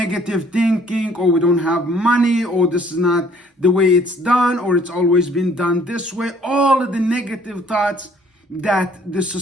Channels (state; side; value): normal; both; correlation 0.59